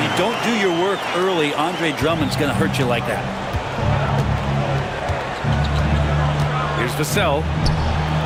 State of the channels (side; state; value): both; identical; correlation 1.00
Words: you don't do your work early. Andre Drummond's going to hurt you like that. Here's Vassell.